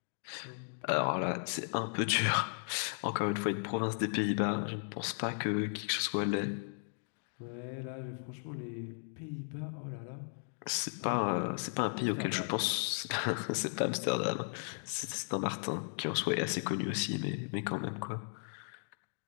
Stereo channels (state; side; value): silent; right; digital silence